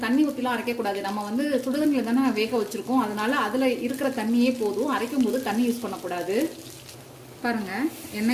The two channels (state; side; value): identical; both; correlation 1.00